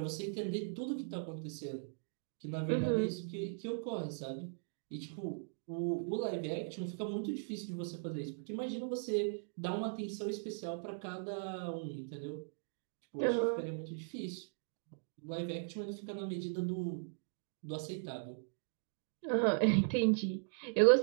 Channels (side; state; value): left; silent; digital silence